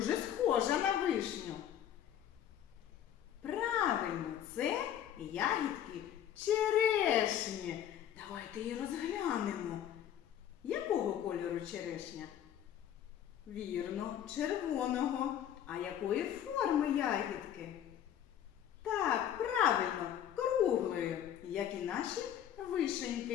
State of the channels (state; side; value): quieter; right; 10.3 dB